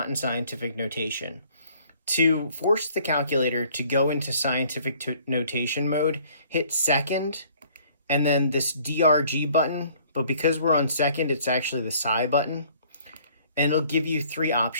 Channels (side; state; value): both; inverted; correlation -0.58